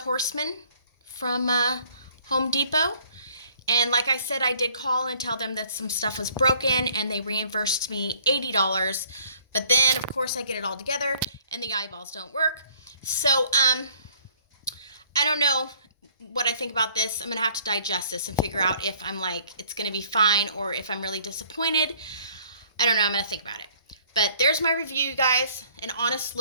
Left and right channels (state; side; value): inverted; both; correlation -0.59